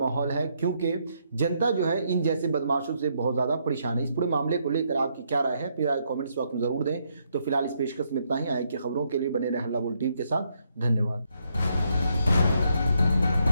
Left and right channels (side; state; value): both; inverted; correlation -0.75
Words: है, क्योंकि जनता जो है इन जैसे बदमाशों से बहुत ज़्यादा परेशान है। इस पूरे मामले को लेकर आपकी क्या राय है, फिर कमेंट्स बॉक्स में ज़रूर दें। तो फिलहाल इस पेशकश में इतना ही। आए की खबरों के लिए बने रहे हल्ला बोल टीवी के साथ। धन्यवाद।